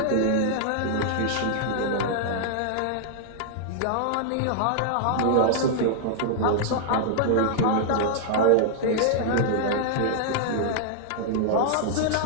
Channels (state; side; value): different; both; correlation -0.01